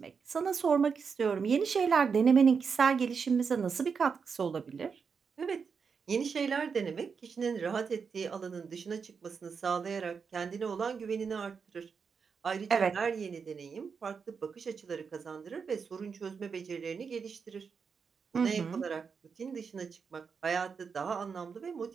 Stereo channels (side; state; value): left; quieter; 5.8 dB